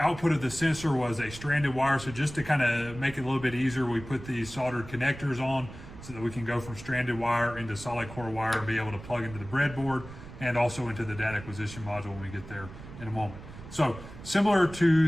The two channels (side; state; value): right; noise; rumble, 15 dB below the sound